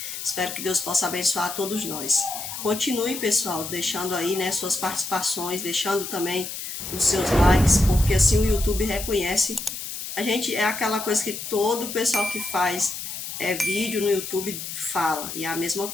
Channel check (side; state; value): left; noise; hiss, 7 dB below the sound